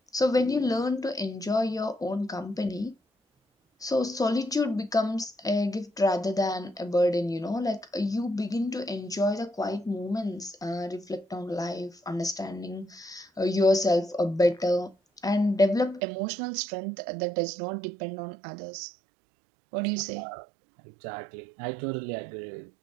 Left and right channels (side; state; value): left; drops out; at 16.0 s